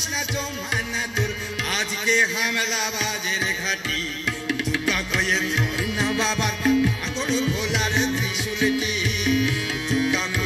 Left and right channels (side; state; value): both; identical; correlation 1.00